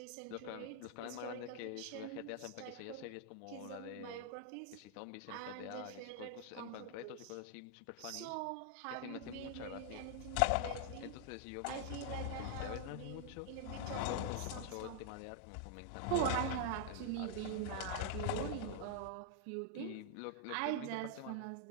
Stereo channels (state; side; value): different; both; correlation 0.00